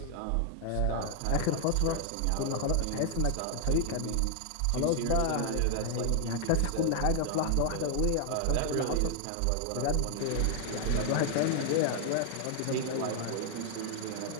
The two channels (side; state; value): both; different; correlation 0.00